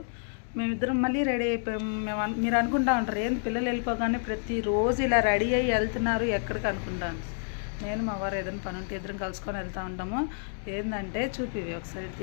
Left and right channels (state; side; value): silent; right; digital silence